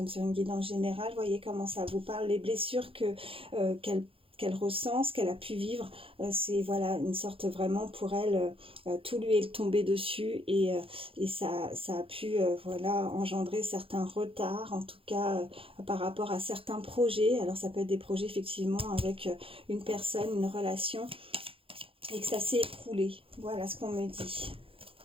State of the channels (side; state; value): left; late; 0.27 ms